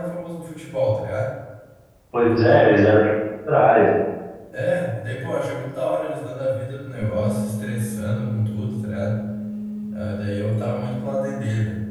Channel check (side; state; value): both; identical; correlation 1.00